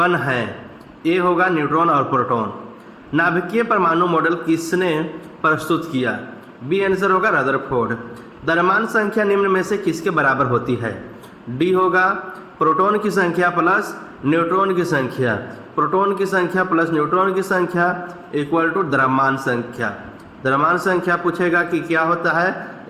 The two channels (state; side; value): identical; both; correlation 1.00